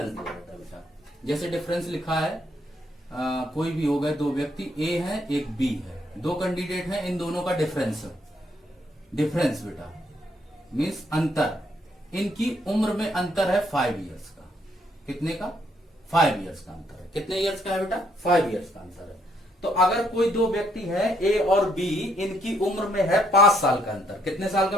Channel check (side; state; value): both; normal; correlation 0.71